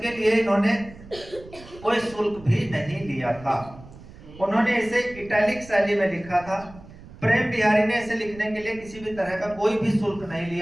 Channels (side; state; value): right; noise; rumble, 19 dB below the sound